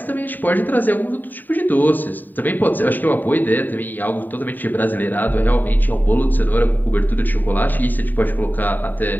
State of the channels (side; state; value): right; late; 0.089 ms